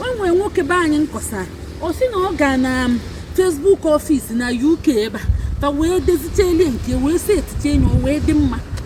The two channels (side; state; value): both; identical; correlation 1.00